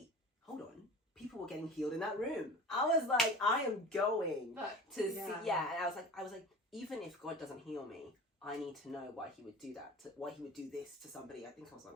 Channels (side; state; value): both; normal; correlation 0.37